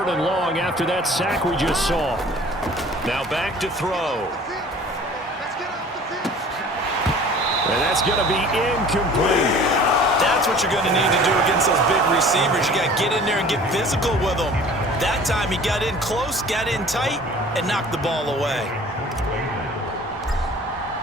and long after that sack we just saw. Now back to throw. And that's going to be incomplete. That's what you're going to need to do against those big receivers. You got to get in there and get physical with them. That time he got in close, got in tight, and knocked the ball away.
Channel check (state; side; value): normal; both; correlation 0.47